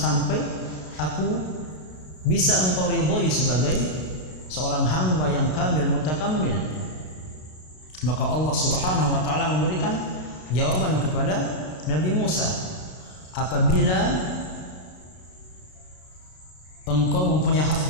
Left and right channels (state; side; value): late; right; 32 ms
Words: aku bisa engkau ridhoi sebagai seorang hamba yang kamil, mutakammil? Maka Allah Subhanahu wa ta'ala memberikan jawaban kepada Nabi Musa. Apabila engkau mempunyai